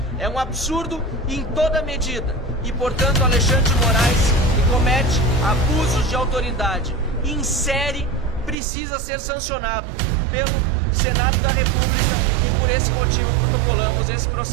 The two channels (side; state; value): left; drops out; at 8.6 s